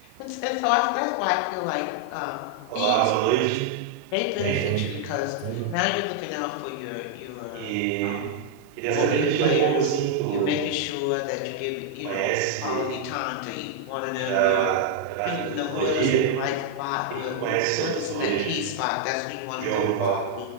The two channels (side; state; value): both; different; correlation -0.01